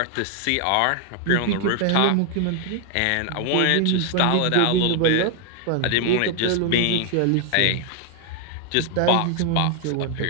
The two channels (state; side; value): different; both; correlation 0.00